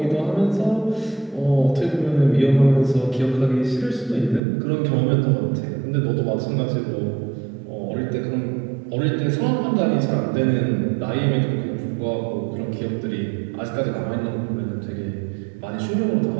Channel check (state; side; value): drops out; left; at 4.4 s